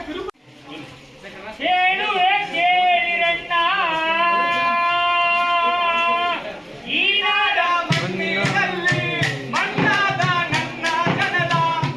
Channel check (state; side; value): identical; both; correlation 1.00